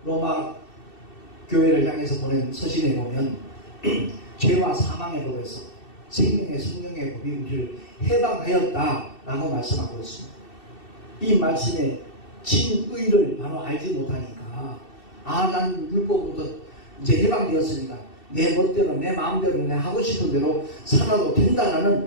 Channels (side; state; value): right; late; 2.7 ms